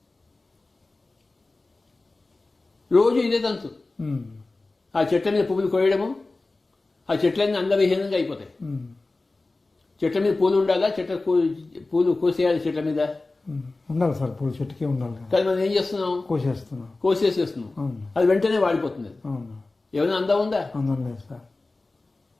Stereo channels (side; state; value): right; quieter; 3.3 dB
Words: రోజు ఇదే తంతు. ఉమ్, ఆ చెట్ల మీద పువ్వులు కోయడము, ఆ చెట్లన్నీ అందవిహీనంగా అయిపోతాయి. ఉమ్, చెట్ల మీద పూలు ఉండాలా, పూలు కోసేయాలి చెట్ల మీద. ఉమ్, ఉండాలి సార్, పూల చెట్టుకే ఉండాలి కదా. కానీ మనం ఏం చేస్తున్నాం? కోసేస్తున్నాం. కోసేసేస్తున్నాం. అవును, అది వెంటనే వాడిపోతుంది. అవును, ఏమైనా అందం ఉందా? అందరం లేదు సార్.